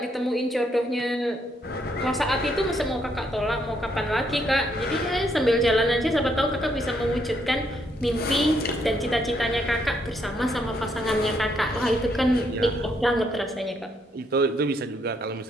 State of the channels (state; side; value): normal; both; correlation 0.74